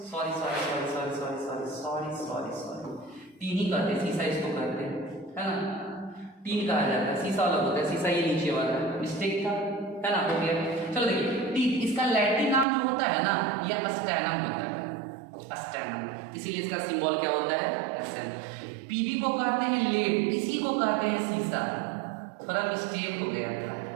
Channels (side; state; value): left; drops out; at 12.7 s